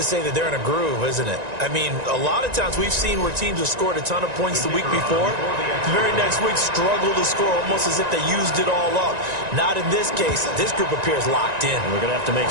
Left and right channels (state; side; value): late; left; 1.9 ms